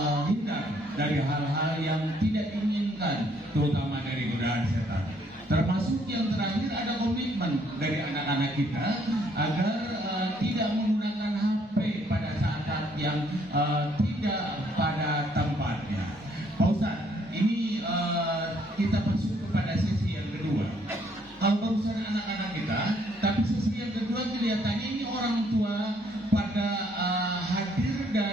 dari hal-hal yang tidak diinginkan, terutama dari godaan setan. Termasuk yang terakhir ada komitmen dari anak-anak kita agar tidak menggunakan HP pada saat yang tidak pada tempatnya. Pak Ustadz, ini kita masuk kepada sesi yang kedua. Kalau barusan anak-anak kita, tapi sesi yang kedua kelihatannya ini orang tua pada hadir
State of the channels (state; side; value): normal; both; correlation 0.67